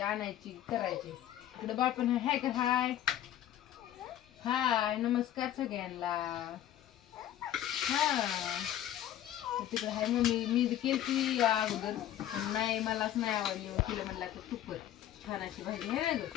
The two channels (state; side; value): quieter; right; 11.9 dB